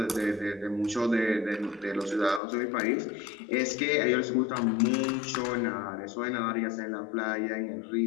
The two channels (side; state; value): right; drops out; at 2.4 s